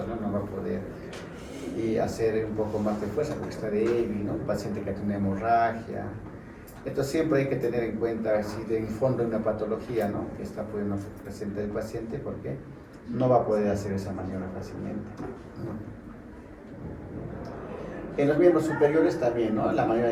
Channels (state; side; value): identical; both; correlation 1.00